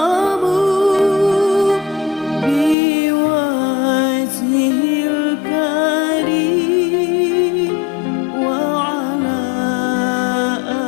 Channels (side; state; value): right; drops out; at 2.8 s